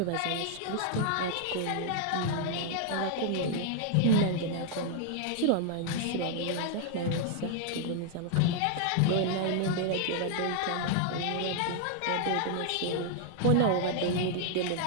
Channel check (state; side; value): different; both; correlation 0.00